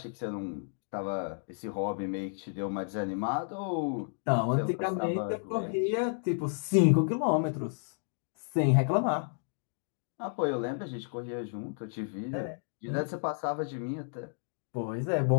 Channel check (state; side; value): silent; right; digital silence